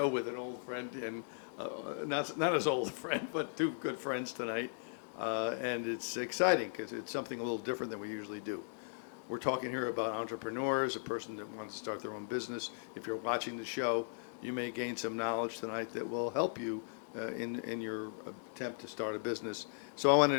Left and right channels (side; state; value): right; silent; digital silence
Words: with an old friend, and not as old a friend, but two good friends tonight. And it's exciting because it's something a little different than we usually do. We're talking here about entrepreneurs, a person that wants to start their own business. If you're watching the show, you may gain some knowledge tonight that will help you in your attempt to start a business. So I want to